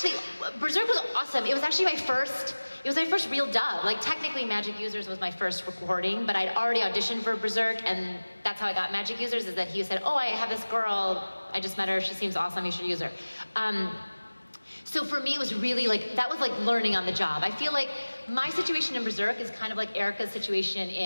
awesome. It was actually my first real dub. Like technically Magic Users was my first recording, but I'd already auditioned for Berserk, and that's how I got Magic Users, is that he said, oh, I have this girl, I just met her, she seems awesome, you should use her. So for me, it was really like, that was like learning on the job. I feel like my situation in Berserk is kind of like Erica's situation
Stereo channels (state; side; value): inverted; both; correlation -1.00